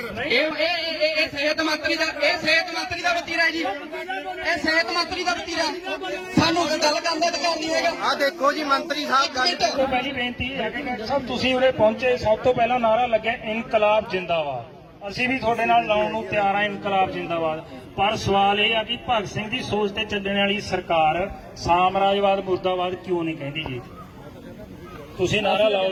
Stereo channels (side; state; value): both; identical; correlation 1.00